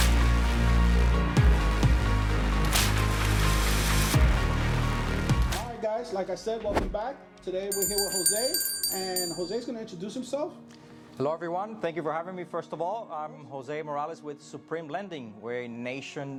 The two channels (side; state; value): both; identical; correlation 1.00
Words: Guys, like I said, welcome back. Today we're here with Jose, and Jose's going to introduce himself. Hello everyone, thank you for having me. First of all, I'm Jose Morales with Supreme Lending. We're a